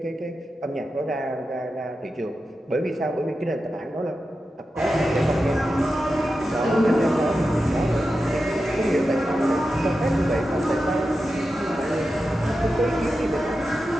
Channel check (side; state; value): both; normal; correlation 0.91